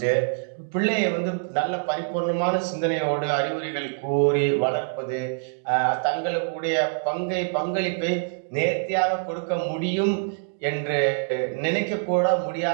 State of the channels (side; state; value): left; silent; digital silence